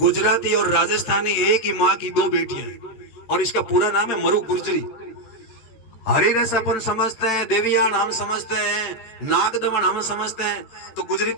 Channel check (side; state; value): right; late; 13 ms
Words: और राजस्थानी एक ही माँ की दो बेटियां हैं और इसका पूरा नाम है मरु गुर्जरी। हरिरस अपन समझते हैं, देवियान हम समझते हैं, नागदमन हम समझते हैं। तो